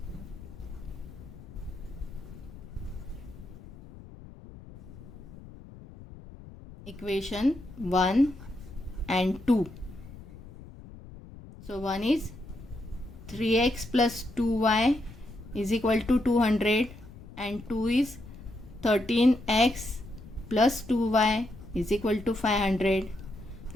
Equation 1 and 2. So 1 is 3x plus 2y is equal to 200, and 2 is 13x plus 2y is equal to 500.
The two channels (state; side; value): noise; left; rumble, 17 dB below the sound